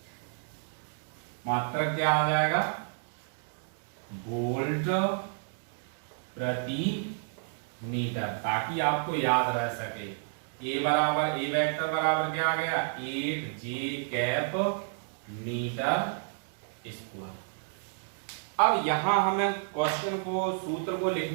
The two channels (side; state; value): left; silent; digital silence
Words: मात्रक क्या आ जाएगा वोल्ट प्रति मीटर, ताकि आपको याद रह सके। ए वेक्टर बराबर क्या आ गया 8j कैप मीटर स्क्वायर। अब यहां हमें क्वेश्चन को सूत्र को